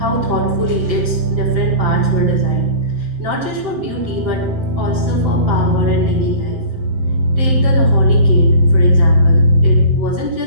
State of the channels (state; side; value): late; left; 7.8 ms